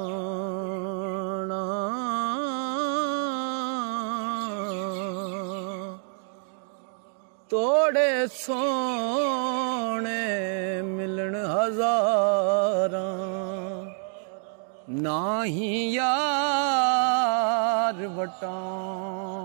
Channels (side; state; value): left; silent; 60 dB below the other